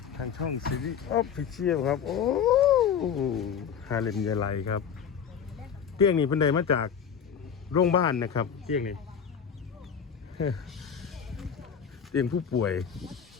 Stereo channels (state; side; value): quieter; right; 7.5 dB